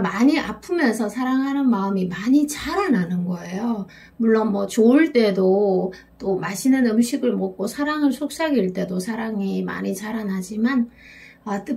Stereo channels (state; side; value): identical; both; correlation 1.00